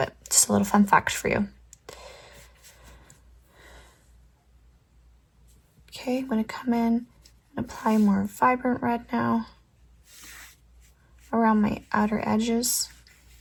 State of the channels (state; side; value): identical; both; correlation 1.00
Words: just a little fun fact for you. Okay, I'm going to come in and apply more vibrant red now around my outer edges.